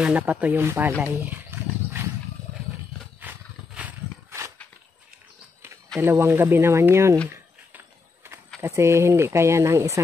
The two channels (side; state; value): right; quieter; 4.5 dB